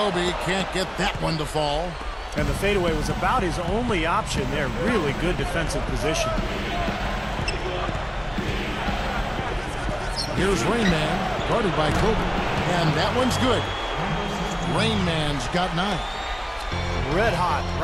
can't get that one to fall. And the fadeaway was about his only option there. Really good defensive position. Here's Rain Man, guarded by Kobe. And that one's good. Rain Man's got 9. Red hot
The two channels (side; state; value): both; identical; correlation 1.00